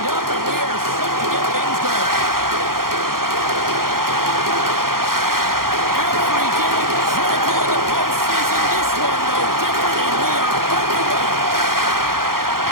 up, and we are set to get things going. Every game critical in the postseason. This one, no different, and we are underway.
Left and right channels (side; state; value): left; late; 0.92 ms